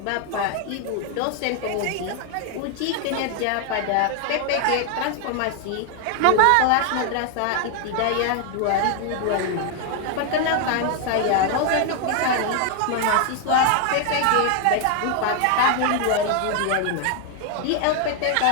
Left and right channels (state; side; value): different; both; correlation 0.00